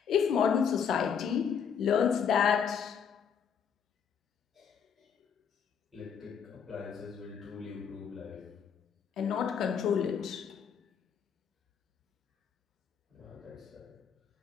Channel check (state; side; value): quieter; right; 7.2 dB